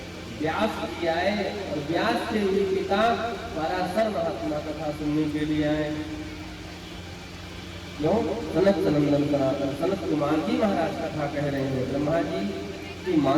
व्यास जी आए और व्यास से हुई पिता पराशर महात्मा कथा सुनने के लिए आए। क्यों? सनत सनंदन सनातन सनत कुमार जी महाराज कथा कह रहे हैं। ब्रह्मा जी की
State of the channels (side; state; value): both; identical; correlation 1.00